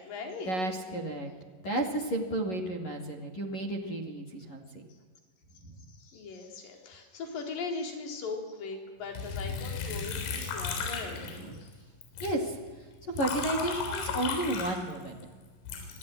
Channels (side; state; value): right; late; 11 ms